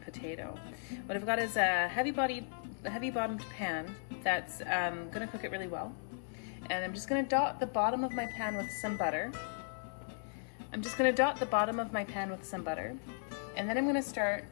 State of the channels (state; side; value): silent; right; 54 dB below the other